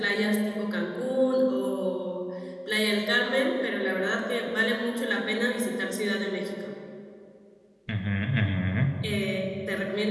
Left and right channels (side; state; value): both; identical; correlation 1.00